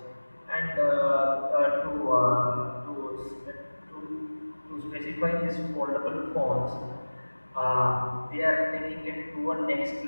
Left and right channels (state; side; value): inverted; both; correlation -1.00